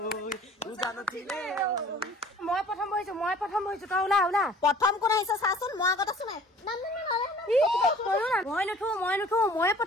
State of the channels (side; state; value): both; normal; correlation 0.49